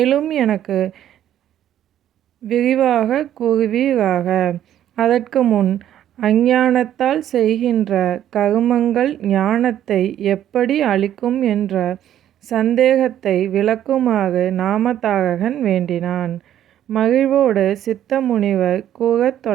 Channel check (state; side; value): quieter; left; 11.2 dB